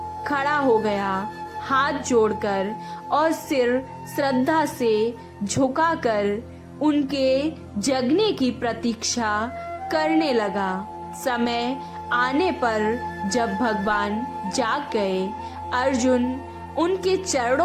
खड़ा हो गया, हाथ जोड़कर और सिर श्रद्धा से झुकाकर उनके जगने की प्रतीक्षा करने लगा। समय आने पर जब भगवान जाग गए, अर्जुन उनके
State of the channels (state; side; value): identical; both; correlation 1.00